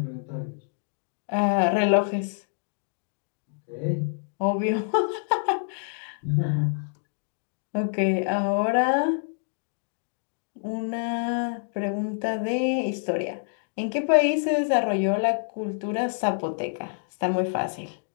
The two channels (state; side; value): silent; right; digital silence